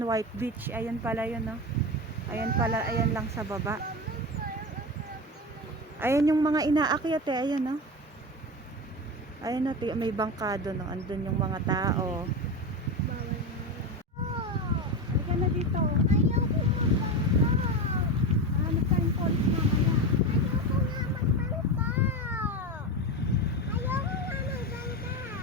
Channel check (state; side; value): normal; both; correlation 0.21